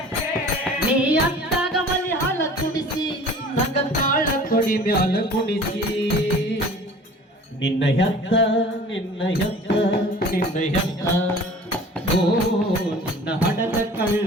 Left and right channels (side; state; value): both; normal; correlation 0.45